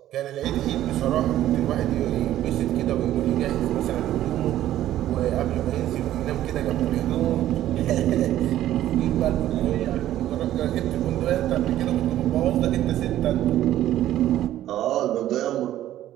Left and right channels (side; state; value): left; quieter; 13.0 dB